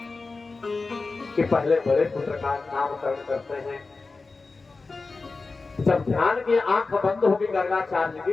कि पहले बड़े पुत्र का नामकरण करते हैं। जब ध्यान की आंख बंद होगी गर्गाचार्य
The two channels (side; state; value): right; quieter; 3.9 dB